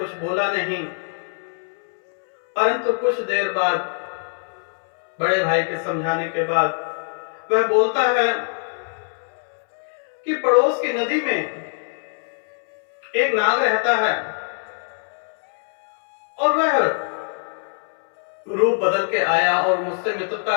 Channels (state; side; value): silent; right; 64 dB below the other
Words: बोला नहीं, परंतु कुछ देर बाद बड़े भाई के समझाने के बाद वह बोलता है कि पड़ोस की नदी में एक नाग रहता है, और वह रूप बदल के आया और मुझसे